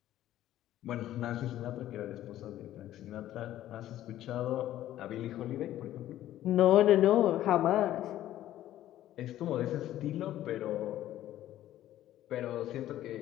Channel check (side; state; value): right; quieter; 13.2 dB